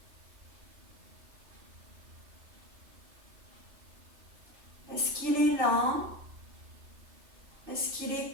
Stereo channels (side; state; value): left; late; 2.6 ms